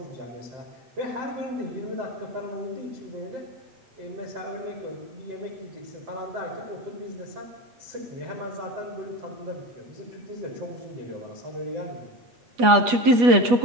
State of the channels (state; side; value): late; left; 8.3 ms